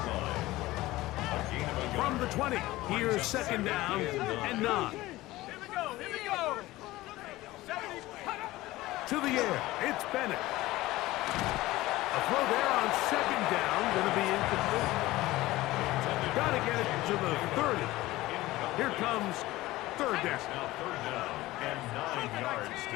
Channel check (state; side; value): quieter; right; 17.9 dB